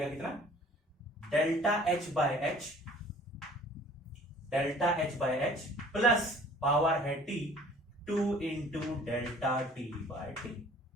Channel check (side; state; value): both; normal; correlation 0.51